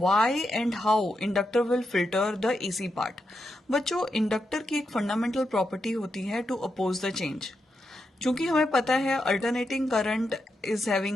and how inductor will filter the AC part? बच्चों, इंडक्टर की एक फंडामेंटल प्रॉपर्टी होती है टू अपोज द चेंज। चूंकि हमें पता है alternating current is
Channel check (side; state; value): both; normal; correlation 0.85